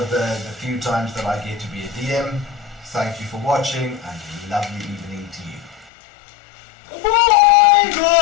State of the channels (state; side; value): drops out; right; at 5.9 s